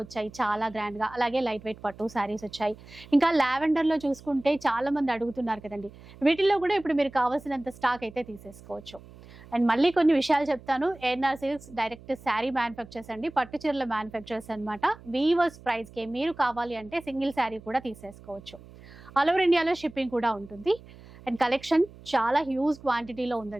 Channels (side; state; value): right; noise; hum, 20 dB below the sound